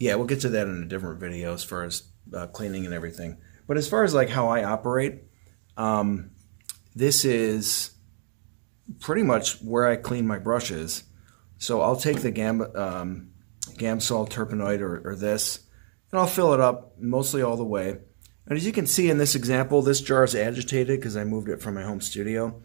we'll get to that in a different video as far as cleaning and everything. But as far as like how I operate, this is pretty much where I clean my brushes. So I'll take the Gamsol Terpenoid or this, and I'll fill it up mostly all the way. And as you can see in this example, this jar is agitated because I moved it from my home studio.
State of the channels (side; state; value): left; silent; 60 dB below the other